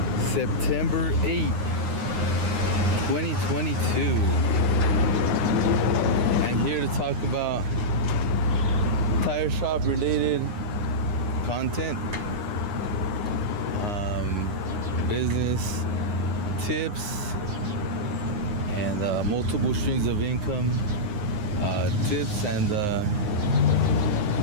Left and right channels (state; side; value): late; left; 9.7 ms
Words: September 8th, 2022. And here to talk about tire shop related content, business tips, and multiple streams of income tips, and